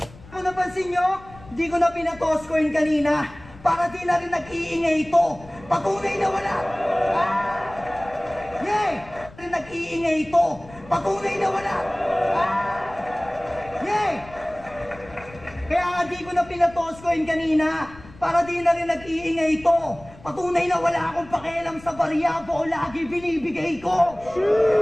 Kung napansin nyo, di ko na pinatoss coin kanina. Para di na rin nag-iingay ito. Patunay na wala. Yay! Rin nag-iingay ito. Patunay na wala. Yay! Kaya nga di ko na pinatoss coin kanina. Para di na rin nag-iingay ito. Patunay na wala akong pakialam sa barya o lagi binibigay ko.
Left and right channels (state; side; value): noise; left; rumble, 20 dB below the sound